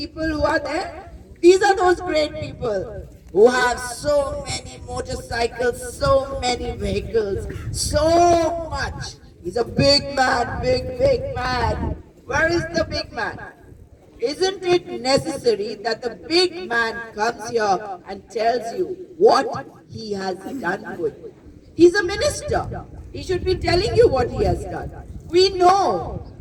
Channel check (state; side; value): identical; both; correlation 1.00